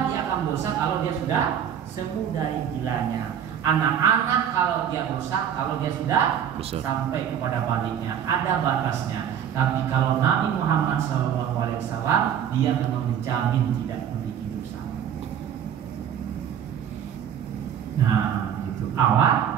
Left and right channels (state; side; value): quieter; left; 9.0 dB